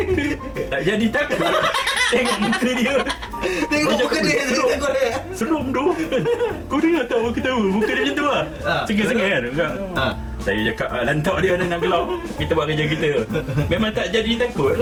Tak jadi takut. Tengok muka dia. Tengok muka dia. Seram tu. Kau dengar tak orang ketawa? Muka dia macam tu lah. Sengih-sengih kan. Saya cakap lantak dia dengan gelap. Kita buat kerja kita. Memang tak jadi takut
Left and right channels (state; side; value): identical; both; correlation 1.00